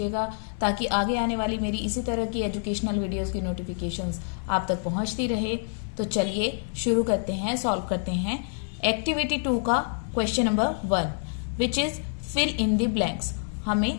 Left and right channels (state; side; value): silent; right; digital silence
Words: ताकि आगे आने वाली मेरी इसी तरह की एजुकेशनल वीडियोस की नोटिफिकेशंस आप तक पहुंचती रहे। तो चलिए शुरू करते हैं, सॉल्व करते हैं एक्टिविटी 2 का question number 1 which is fill in the blanks. हमें